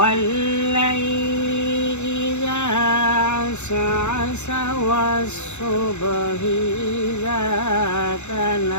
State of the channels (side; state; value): right; late; 0.83 ms